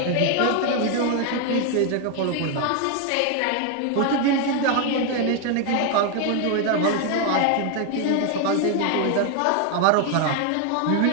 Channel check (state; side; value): different; both; correlation 0.01